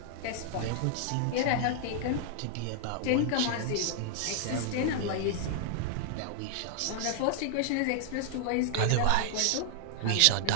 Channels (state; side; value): different; both; correlation -0.01